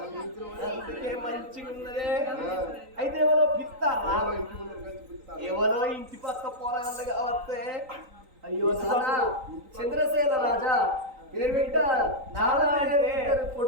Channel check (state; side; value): late; left; 3.9 ms